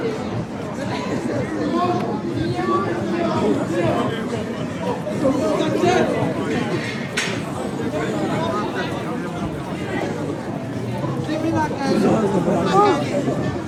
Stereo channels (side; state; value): both; identical; correlation 1.00